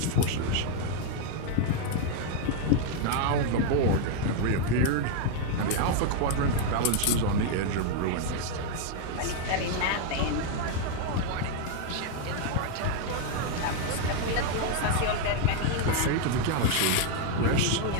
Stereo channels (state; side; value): different; both; correlation 0.00